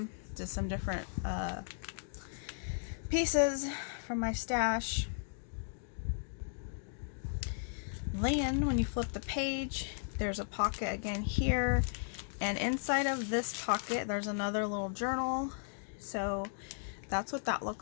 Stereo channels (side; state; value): right; silent; digital silence